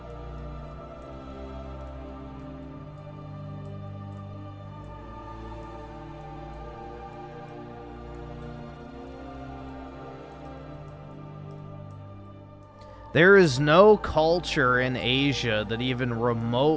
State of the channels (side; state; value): both; identical; correlation 1.00